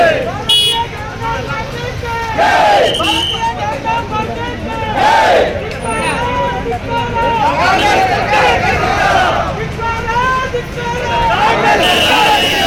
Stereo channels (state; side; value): identical; both; correlation 1.00